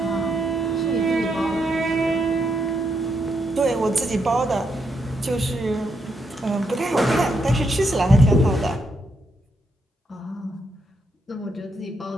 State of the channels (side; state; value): both; normal; correlation 0.79